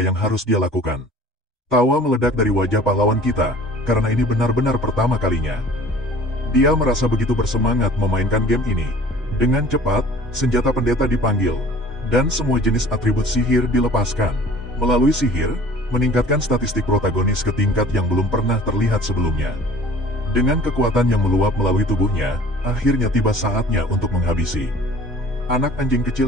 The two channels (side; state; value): both; normal; correlation 0.48